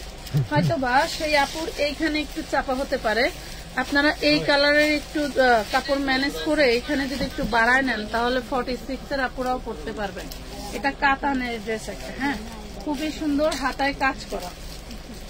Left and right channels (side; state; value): both; identical; correlation 1.00